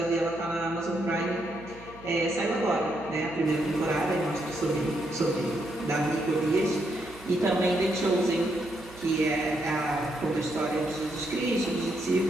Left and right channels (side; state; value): right; noise; hum, 20 dB below the sound